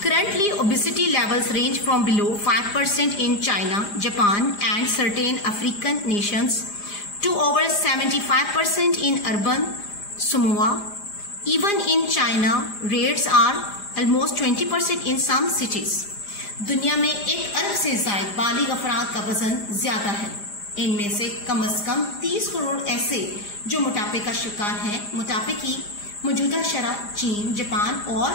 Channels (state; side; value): late; right; 4.9 ms